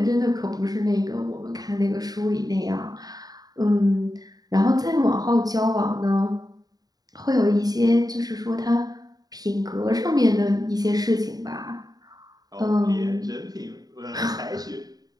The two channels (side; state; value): left; late; 0.18 ms